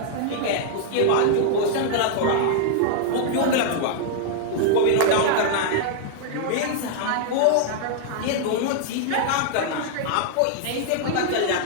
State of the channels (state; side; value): different; both; correlation -0.01